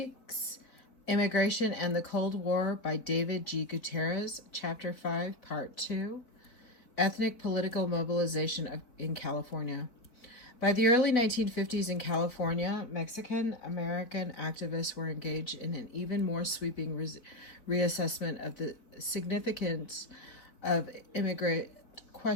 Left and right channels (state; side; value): late; right; 4.0 ms